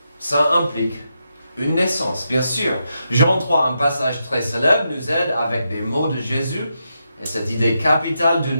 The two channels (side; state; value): both; inverted; correlation -0.84